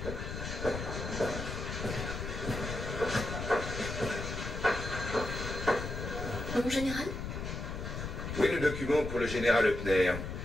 Mon général? Où est le document pour le général Eupner?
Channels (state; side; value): noise; left; rumble, 5 dB below the sound